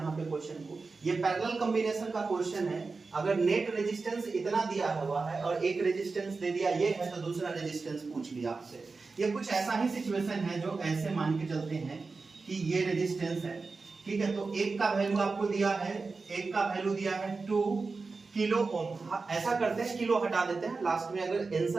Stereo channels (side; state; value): left; quieter; 4.1 dB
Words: पे क्वेश्चन को, ये पैरेलल कॉम्बिनेशन का क्वेश्चन है। अगर नेट रेजिस्टेंस इतना दिया हुआ है और एक रेजिस्टेंस दे दिया ये है, तो दूसरा रेजिस्टेंस पूछ लिया आपसे। ये कुछ ऐसा ही सिचुएशन है जो ऐसे मान के चलते हैं कि ये रेजिस्टेंस है, ठीक है, तो एक का वैल्यू आपको दिया है, एक का वैल्यू दिया है 2 किलो ओम। ऐसा करते हैं, किलो हटा देते हैं लास्ट में, अगर